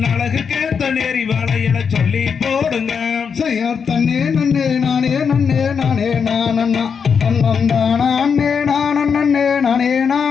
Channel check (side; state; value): right; quieter; 6.4 dB